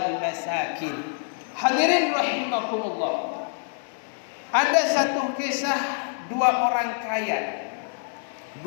masakin. Hadirin rahimakumullah. Ada satu kisah dua orang kaya.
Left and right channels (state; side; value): silent; right; digital silence